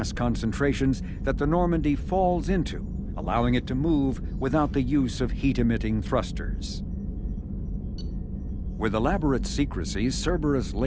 concentrations that the Normandy falls into, allowing it to move without the use of heat-emitting thrusters. With elaborate secrecy, Cerberus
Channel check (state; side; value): identical; both; correlation 1.00